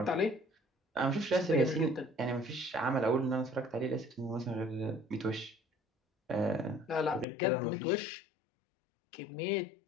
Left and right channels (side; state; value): right; drops out; at 7.2 s